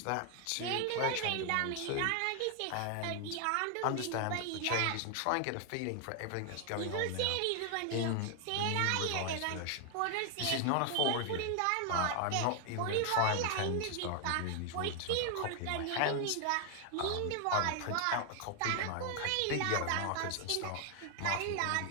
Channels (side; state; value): both; different; correlation 0.00